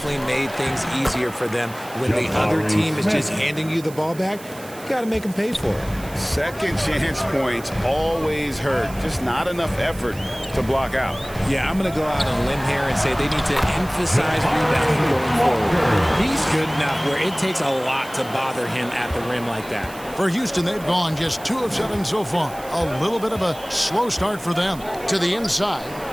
made things easier for them. When the other team is just handing you the ball back, you got to make them pay for it. Second chance points always hurt. Just not enough effort to block out. Yeah, I'm going to go out on a limb here and say they need to emphasize rebounding going forward. He's good enough where it takes a lot to bother him at the rim like that. For Houston, they've gone just 2 of 7 so far. A little bit of a slow start for them. To the inside.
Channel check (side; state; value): right; noise; hiss, 18 dB below the sound